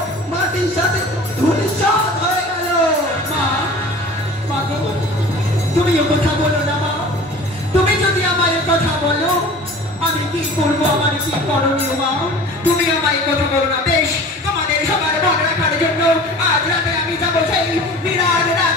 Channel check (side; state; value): both; normal; correlation 0.41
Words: মাটির সাথে ধূলিসাৎ হয়ে গেল। মা গো, তুমি এ কথা বলো না মা। তুমি যদি আমায় কথা বলো, আমি কি করবো, আমার কি করণীয় মা? তুমি আমায় কথা বলো না।